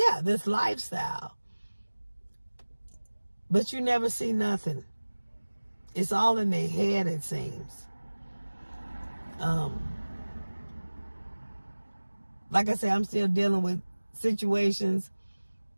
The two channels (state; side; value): inverted; both; correlation -1.00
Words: this lifestyle. But you never see nothing. It's all in their head, it seems. Like I said, I'm still dealing with situations